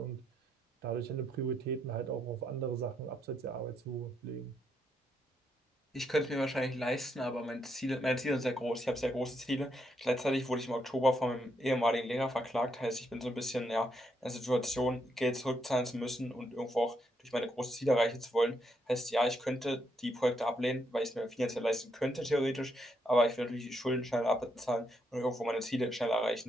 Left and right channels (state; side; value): normal; both; correlation 0.78